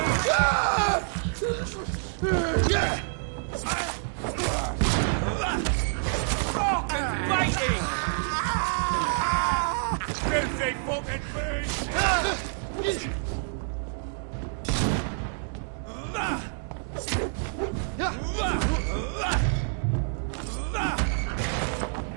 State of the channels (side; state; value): left; silent; digital silence